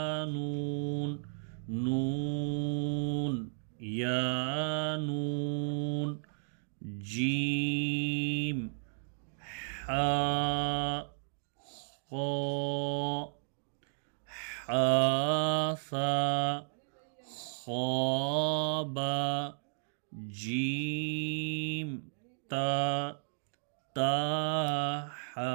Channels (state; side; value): silent; left; digital silence